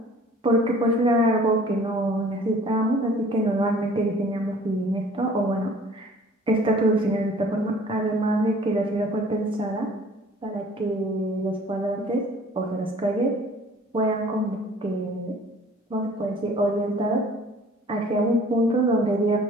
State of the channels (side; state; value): both; normal; correlation 0.51